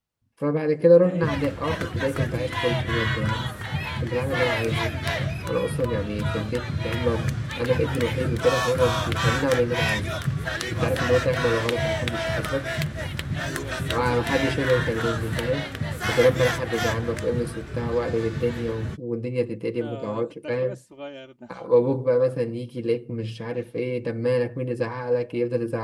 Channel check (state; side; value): identical; both; correlation 1.00